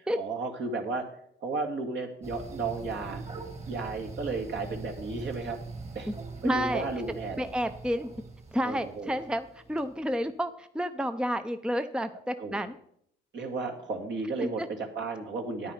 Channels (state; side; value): normal; both; correlation 0.70